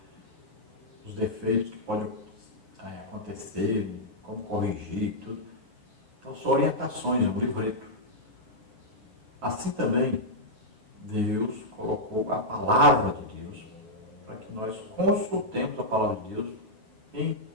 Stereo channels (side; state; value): left; late; 8.8 ms